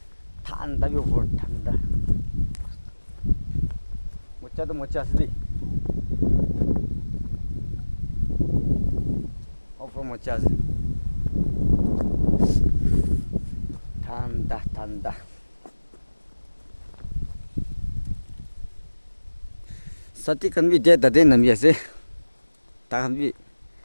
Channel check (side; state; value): both; inverted; correlation -1.00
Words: ठन्डा भी बहुत ठन्डा मचा तो मचा से मचा से ठन्डा ठन्डा साथी खन भी दे दे नम ऐसे ताकन भी